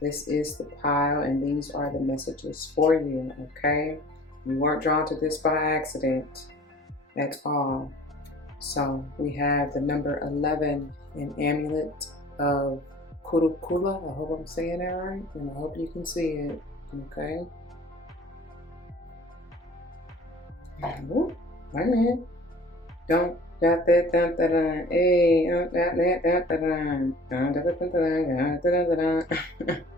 This is the pile, and these are the messages for you, okay? You weren't drawn to this by accident at all. So we have the number 11, an amulet of Kurukula. I hope I'm saying that right, and I hope you can see it, okay? Wait a minute. Don't got that dun dun dun. Hey, that dun dun dun.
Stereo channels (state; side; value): normal; both; correlation 0.47